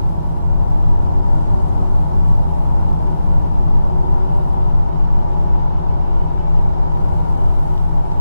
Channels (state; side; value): inverted; both; correlation -0.90